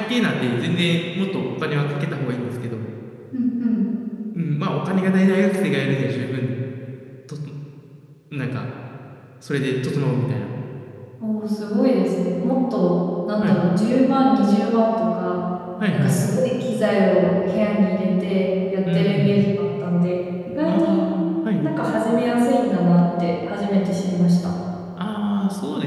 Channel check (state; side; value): identical; both; correlation 1.00